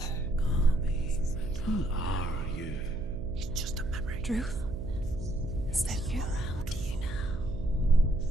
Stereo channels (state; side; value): noise; right; hum, 9 dB below the sound